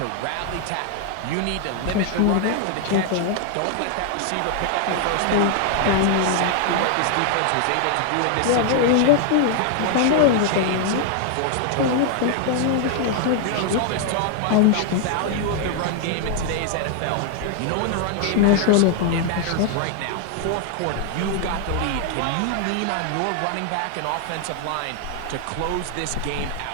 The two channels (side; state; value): both; different; correlation 0.00